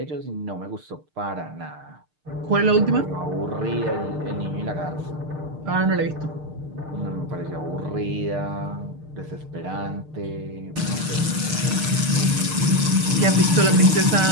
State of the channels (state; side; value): late; left; 6.6 ms